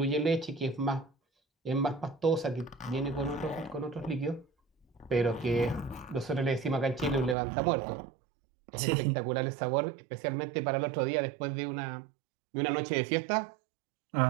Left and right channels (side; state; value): left; drops out; at 7.4 s